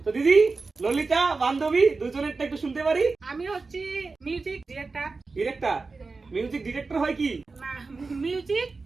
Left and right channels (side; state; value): left; quieter; 4.0 dB